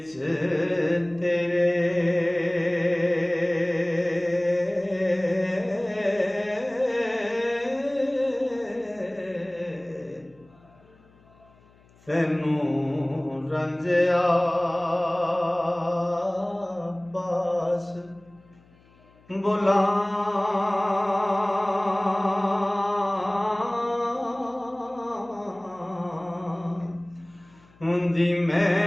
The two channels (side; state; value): left; noise; hum, 29 dB below the sound